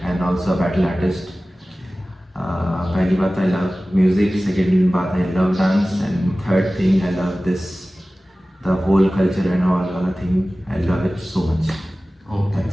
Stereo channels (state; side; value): normal; both; correlation 0.97